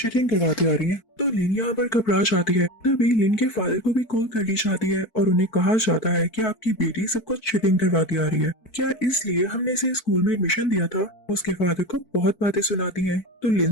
करवाती आ रही है। तो लिन यहाँ पर घबरा जाती है। तभी लिन के फादर को भी कॉल कर दी जाती है और उन्हें कहा जाता है कि आपकी बेटी सब कुछ चीटिंग करवाती आ रही है, क्या इसलिए हमने इसे स्कूल में एडमिशन दिया था। उसके फादर को बहुत बातें सुनाती है तो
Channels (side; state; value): right; late; 4.6 ms